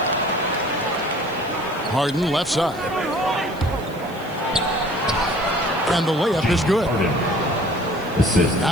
Harden left side. And the layup is good.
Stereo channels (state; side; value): noise; right; hiss, 23 dB below the sound